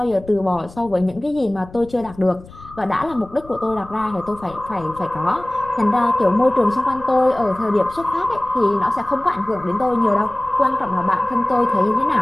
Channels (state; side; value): noise; left; rumble, 20 dB below the sound